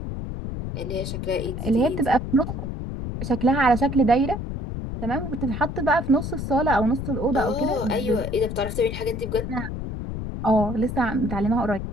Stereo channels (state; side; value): noise; left; rumble, 5 dB below the sound